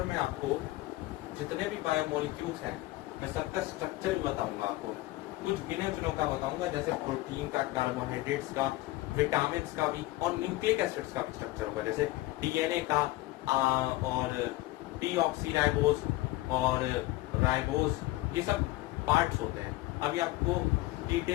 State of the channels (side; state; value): right; quieter; 18.3 dB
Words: में आपको जितने भी बायोमोलिक्यूल्स हैं, मैं सबका स्ट्रक्चर भी बताऊंगा आपको, कुछ गिने चुनों का बताऊंगा, जैसे प्रोटीन का, कार्बोहाइड्रेट्स का, विटामिन का भी, और न्यूक्लिक एसिड्स का भी स्ट्रक्चर होगा, जैसे डीएनए का और डीऑक्सीराइबोज और राइबोज, ये सब पार्ट्स होते हैं। अभी आपको